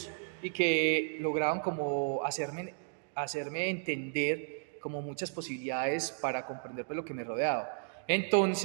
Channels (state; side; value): silent; left; digital silence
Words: y que lograban como hacerme entender como muchas posibilidades para comprender pues, lo que me rodeaba.